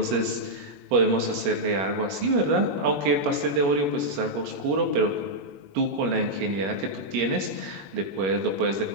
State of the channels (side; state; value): left; late; 21 ms